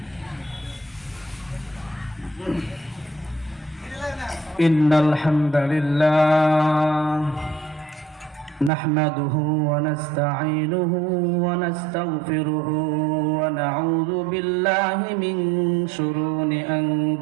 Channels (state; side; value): drops out; left; at 8.7 s